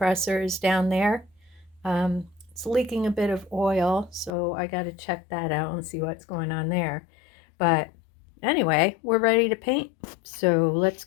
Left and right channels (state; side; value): drops out; right; at 4.3 s